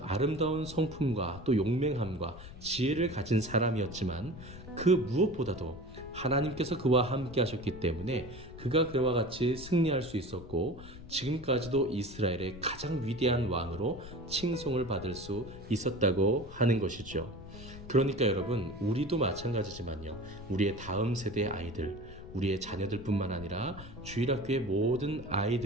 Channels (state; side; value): noise; left; rumble, 15 dB below the sound